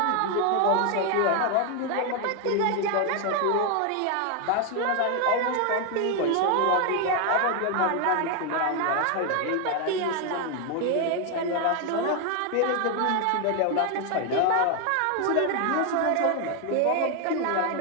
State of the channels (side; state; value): both; different; correlation 0.01